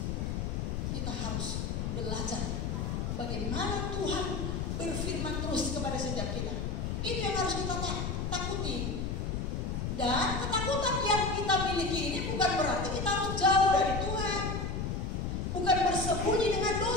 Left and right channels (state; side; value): noise; left; rumble, 1 dB below the sound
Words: kita harus belajar bagaimana Tuhan berfirman terus kepada setiap kita. Itu yang harus kita takuti. Dan ketakutan yang kita miliki ini bukan berarti kita harus jauh dari Tuhan, bukan bersembunyi dengan